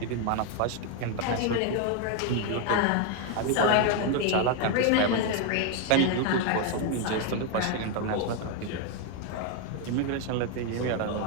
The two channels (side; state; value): both; different; correlation 0.01